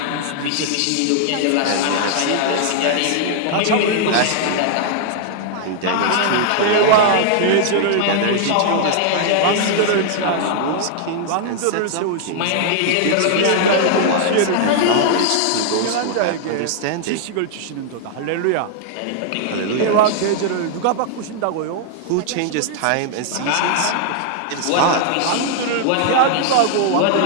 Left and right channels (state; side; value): different; both; correlation -0.01